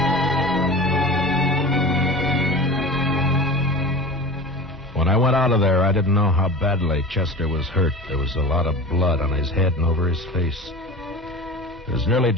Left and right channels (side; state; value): both; normal; correlation 0.34